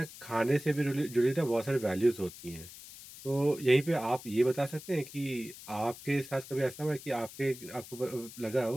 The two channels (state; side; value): noise; left; hiss, 16 dB below the sound